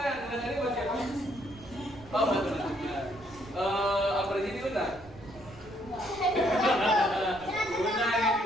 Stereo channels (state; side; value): noise; right; rumble, 20 dB below the sound